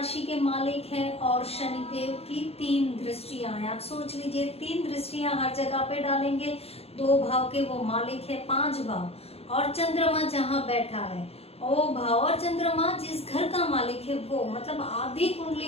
के मालिक हैं और शनिदेव की 3 दृष्टियां हैं। आप सोच लीजिए, 3 दृष्टियां हर जगह पे डालेंगे। 2 भाव के वो मालिक है, 5 भाव, और चंद्रमा जहाँ बैठा है वो भाव, और चंद्रमा जिस घर का मालिक है वो, मतलब आधी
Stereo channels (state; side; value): late; right; 0.29 ms